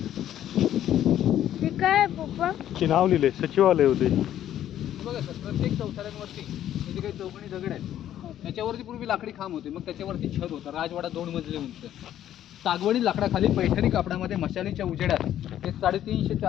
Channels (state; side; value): quieter; right; 11.5 dB